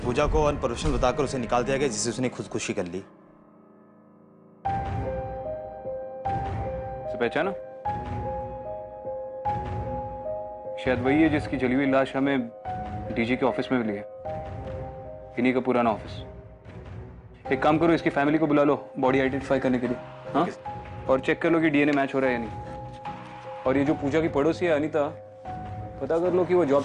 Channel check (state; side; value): identical; both; correlation 1.00